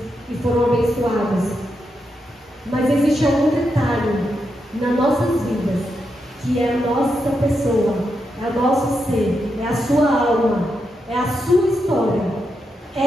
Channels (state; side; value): normal; both; correlation 0.84